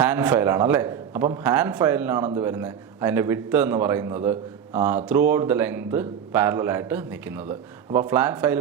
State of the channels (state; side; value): quieter; left; 8.3 dB